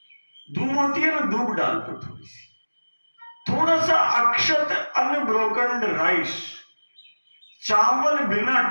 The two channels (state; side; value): inverted; both; correlation -1.00